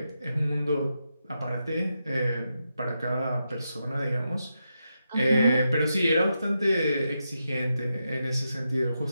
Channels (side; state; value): both; inverted; correlation -0.86